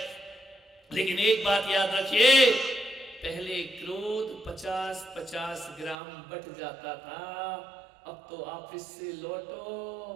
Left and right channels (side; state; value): left; drops out; at 6.0 s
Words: लेकिन एक बात याद रखिए, पहले क्रोध 50-50 ग्राम बट जाता था। अब तो ऑफिस से